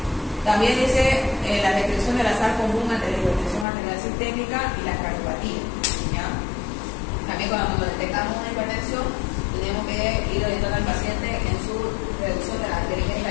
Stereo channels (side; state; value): right; drops out; at 3.7 s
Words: También dice la descripción del azar común ante la hipertensión arterial sistémica y la cardiopatía, ¿ya? También cuando detectamos una hipertensión, tenemos que ir orientando al paciente en su reducción de la ingesta